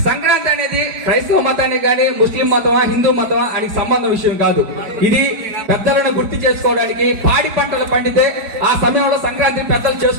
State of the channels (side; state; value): left; late; 5.0 ms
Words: సంక్రాంతి అనేది క్రైస్తవ మతానికి కానీ ముస్లిం మతమా హిందూ మతమా అని సంబంధం విషయం కాదు. ఇది పెద్దలను గుర్తు చేసుకోవడానికి, పాడి పంటలు పండితే ఆ సమయంలో సంక్రాంతి పెద్దలు